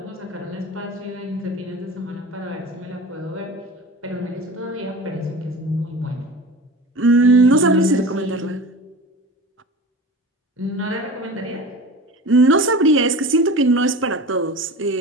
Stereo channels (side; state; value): both; normal; correlation 0.34